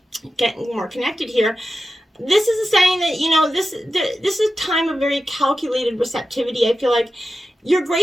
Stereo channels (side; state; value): both; normal; correlation 0.92